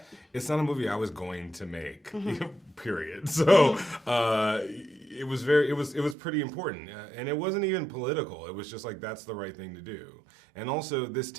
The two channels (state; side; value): drops out; left; at 6.2 s